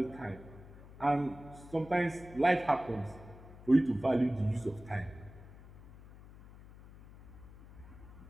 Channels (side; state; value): left; noise; hum, 19 dB below the sound